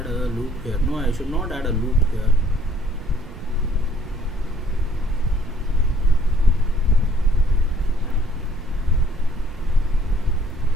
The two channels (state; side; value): noise; right; rumble, 14 dB below the sound